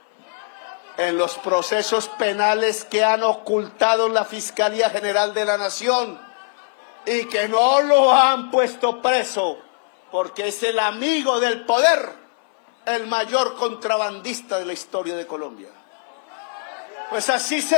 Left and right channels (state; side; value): silent; right; 65 dB below the other